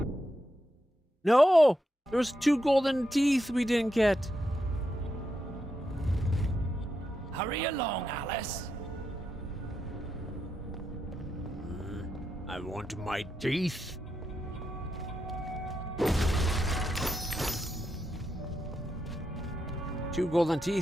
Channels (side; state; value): both; normal; correlation 0.84